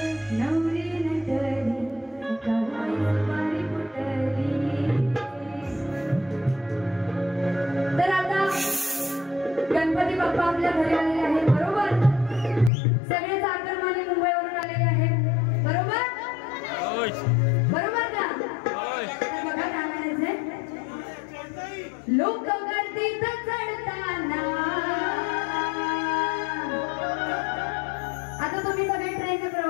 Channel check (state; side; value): drops out; right; at 12.7 s